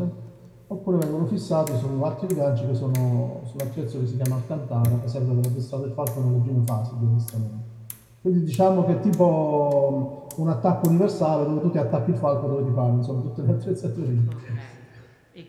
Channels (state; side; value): identical; both; correlation 1.00